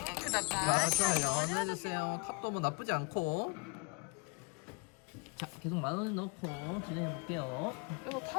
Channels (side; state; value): right; quieter; 32.7 dB